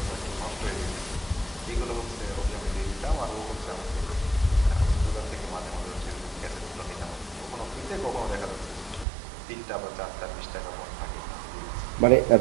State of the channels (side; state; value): left; drops out; at 9.1 s